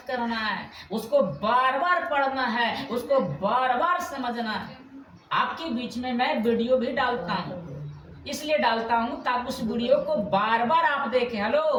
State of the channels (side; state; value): both; identical; correlation 1.00